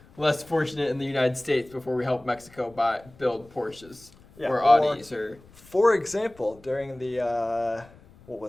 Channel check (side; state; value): left; noise; rumble, 25 dB below the sound